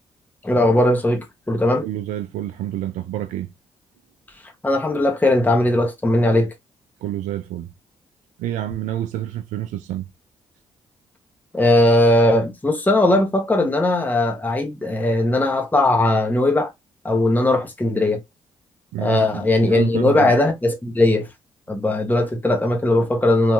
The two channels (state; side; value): normal; both; correlation 0.75